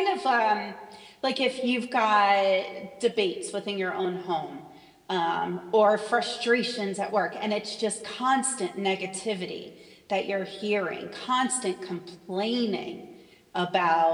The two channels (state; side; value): identical; both; correlation 1.00